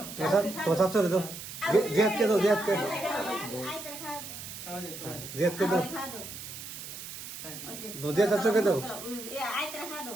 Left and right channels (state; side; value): noise; right; hiss, 10 dB below the sound